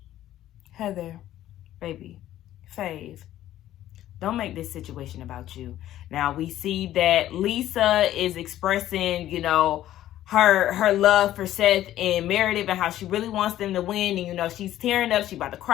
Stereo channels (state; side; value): quieter; right; 13.1 dB